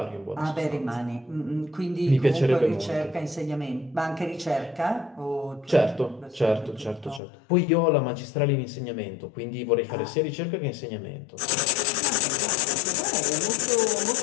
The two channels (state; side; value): drops out; right; at 7.2 s